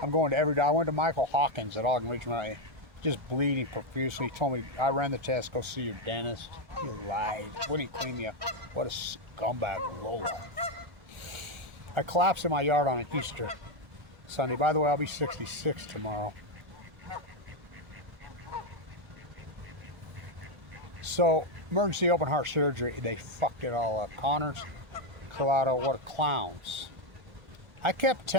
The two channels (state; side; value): late; left; 1.5 ms